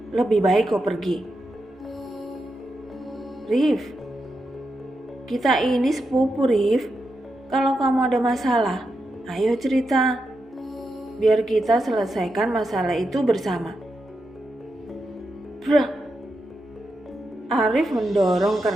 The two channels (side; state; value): both; normal; correlation 0.86